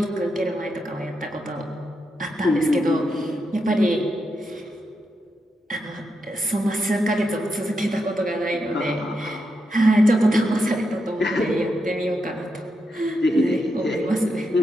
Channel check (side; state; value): both; normal; correlation 0.84